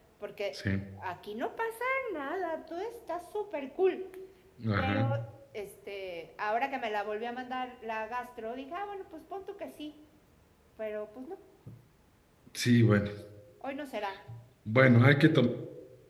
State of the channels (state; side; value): identical; both; correlation 1.00